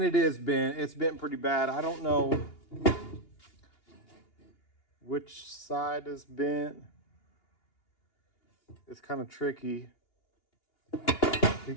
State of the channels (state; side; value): late; right; 2.8 ms